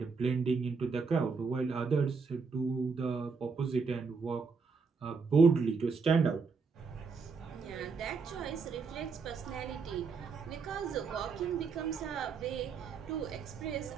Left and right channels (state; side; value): quieter; left; 5.0 dB